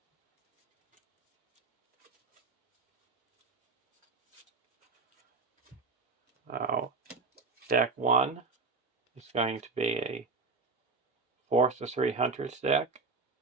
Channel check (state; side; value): quieter; left; 4.3 dB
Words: Now, deck 1 is going to be a 4/3 Hunters deck.